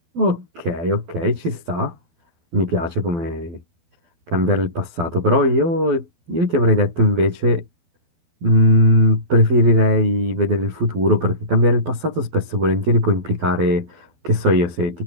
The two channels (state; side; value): late; left; 12 ms